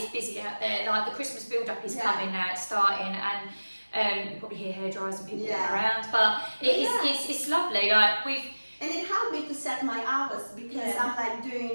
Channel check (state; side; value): inverted; both; correlation -1.00